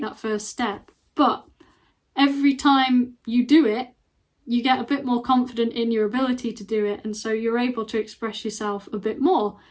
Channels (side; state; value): both; identical; correlation 1.00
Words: that first step. But every time you do it, you get a bit more confident in your ability to do it, and so you're able to express yourself a bit more,